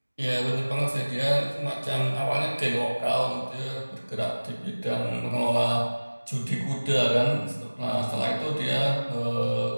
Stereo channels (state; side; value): inverted; both; correlation -1.00